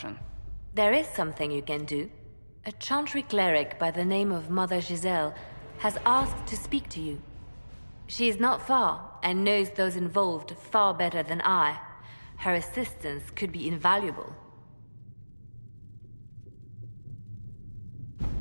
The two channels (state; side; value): inverted; both; correlation -1.00